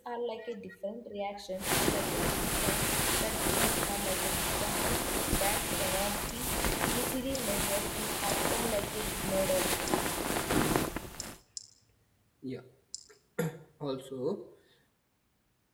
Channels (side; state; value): both; identical; correlation 1.00